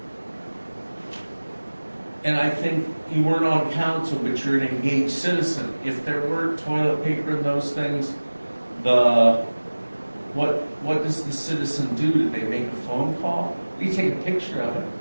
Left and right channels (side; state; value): both; inverted; correlation -1.00